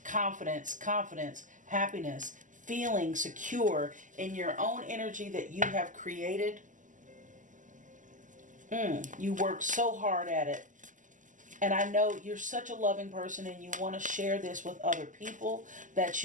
confidence, happiness, feeling secure in your own energy that you have created. You work so hard at it. And I know you're such a loving person and you want to share this with other people that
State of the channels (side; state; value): left; late; 0.37 ms